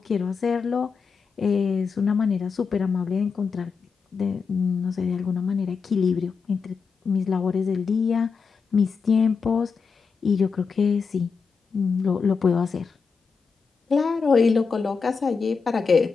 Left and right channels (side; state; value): right; quieter; 5.3 dB